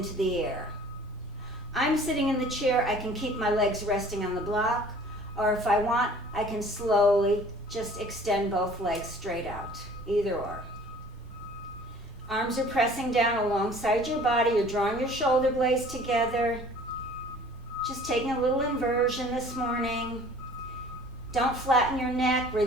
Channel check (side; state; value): both; normal; correlation 0.50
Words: the air. I'm sitting in the chair. I can keep my legs resting on the block, or if I want, I can slowly just extend both legs straight out, either or. Arms are pressing down alongside your body. You're drawing your shoulder blades together. Just taking a little inversion this morning. Don't flatten your neck.